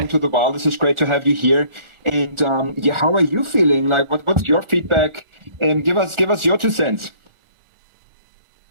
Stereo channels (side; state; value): left; late; 1.4 ms